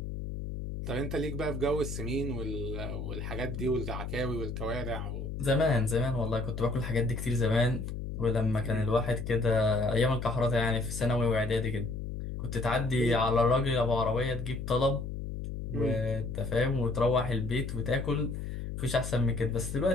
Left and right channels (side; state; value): left; noise; hum, 6 dB below the sound